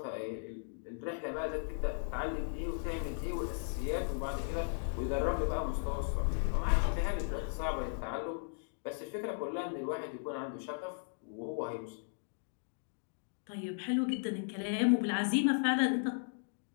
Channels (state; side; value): silent; right; digital silence